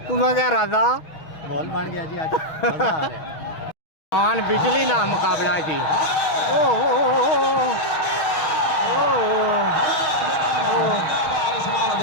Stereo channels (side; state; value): right; late; 6.3 ms